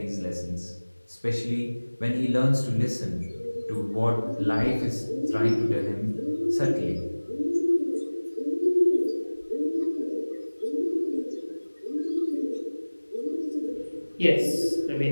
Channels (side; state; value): both; inverted; correlation -1.00